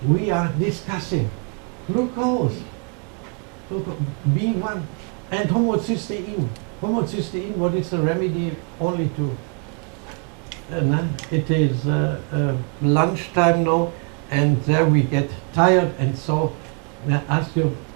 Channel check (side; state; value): left; quieter; 39.6 dB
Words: we are discussing. Glucose, B1, and homocysteine. Homocysteine, what is the remedy only to? It is lunchtime now, and there we get tired, and so I ask you